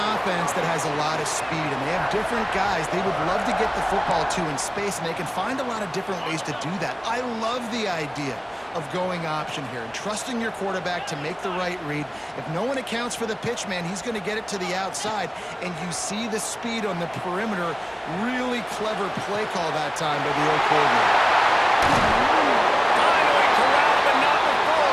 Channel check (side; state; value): both; identical; correlation 1.00